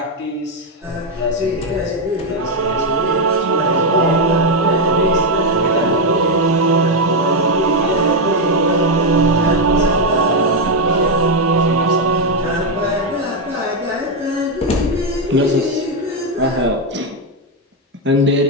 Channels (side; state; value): both; normal; correlation 0.03